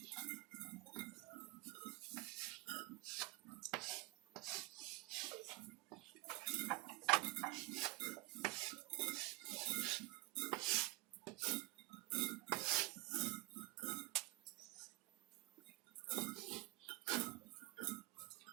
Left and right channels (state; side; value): quieter; left; 22.6 dB